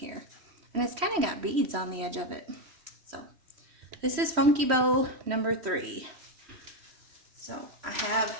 And it's kind of got beads on the edge of it. So this is Funky Bow number 3. So I have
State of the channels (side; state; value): left; late; 3.1 ms